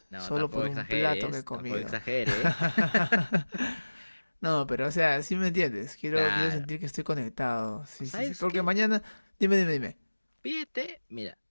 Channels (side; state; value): both; inverted; correlation -1.00